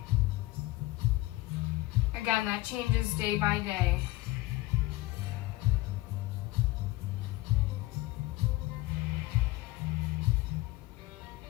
Again, that changes day by day.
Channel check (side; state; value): right; quieter; 19.0 dB